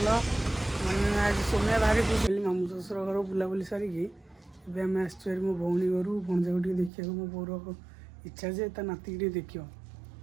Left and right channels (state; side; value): drops out; left; at 6.9 s